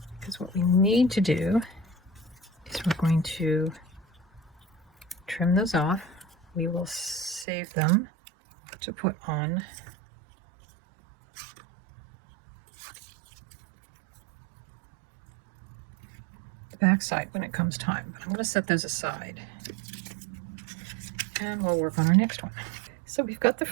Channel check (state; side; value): drops out; left; at 7.5 s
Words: because what we need to do is we're going to trim those off. We will save them to put on the back side when it comes time. But I'm going to set those aside and we'll work on our next one. So we've got the